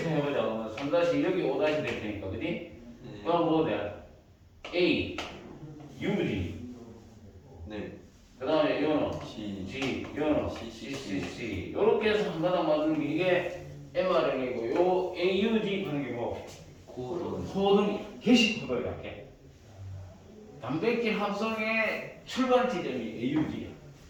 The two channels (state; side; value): identical; both; correlation 1.00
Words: 해보자. 그러면 3- 여기 5- 될 테니까, 그지? 그럼 뭐 돼? A, UG. 그 다음에 요는 G, 요는 CCC. 요렇게 해서 한 가닥 만드는 게 이게 mRNA고, 요 AUG 하는 게 뭐? 코돈, 게시 코드를 이렇게. 단백질 합성의 출발 지점이 AUG야.